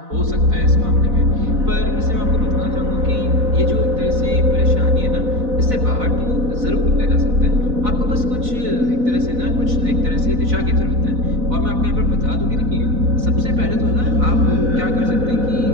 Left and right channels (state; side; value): late; left; 4.0 ms